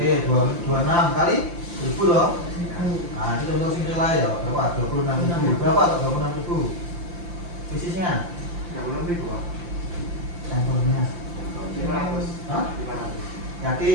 26 kali 1000 loh. Nah, itu contoh sing nilai ya, berapa? 26.000. Berapa tuh 26.000? Bisnisnya? 36.000 Pak. Sampelnya. 500. Hah? 500.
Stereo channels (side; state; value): left; late; 5.8 ms